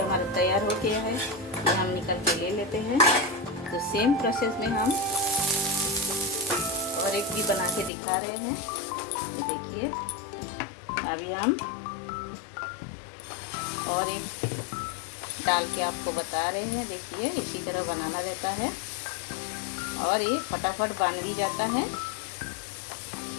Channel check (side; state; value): right; drops out; at 7.9 s